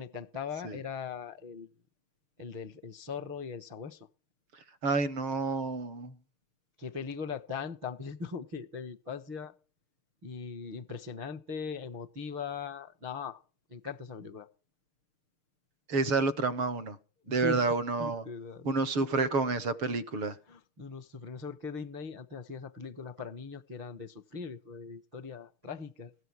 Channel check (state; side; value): late; left; 6.6 ms